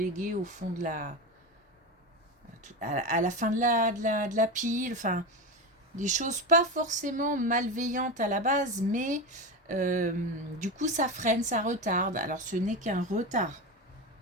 au fond de à la fin de la pile, enfin, des choses pas forcément malveillantes à la base, mais du coup ça freine, ça retarde. Alors ce n'est qu'un retard.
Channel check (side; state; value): both; normal; correlation 0.20